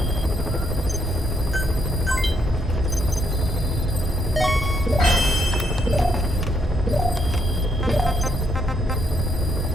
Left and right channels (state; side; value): normal; both; correlation 0.74